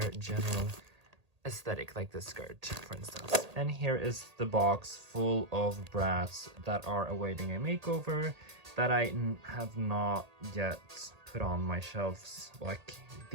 general aesthetic, like this skirt for instance. And here is the box full of Bratz that are awaiting a makeover that I have not yet put on my shelves. Like,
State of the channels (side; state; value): left; late; 1.8 ms